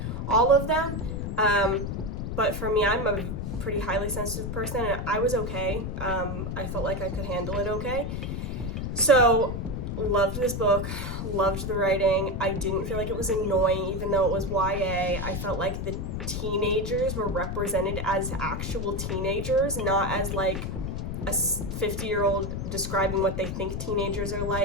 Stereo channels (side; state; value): left; noise; rumble, 4 dB below the sound